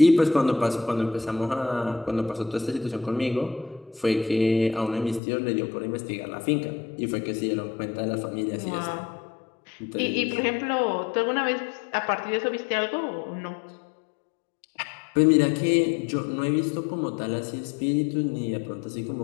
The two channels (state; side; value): drops out; right; at 5.2 s